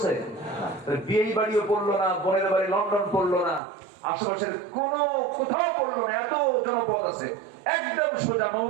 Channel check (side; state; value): left; drops out; at 3.6 s